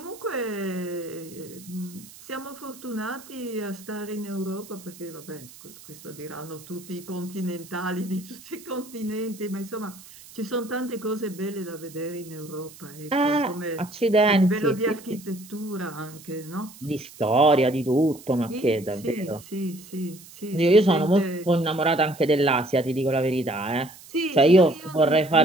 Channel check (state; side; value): noise; right; hiss, 20 dB below the sound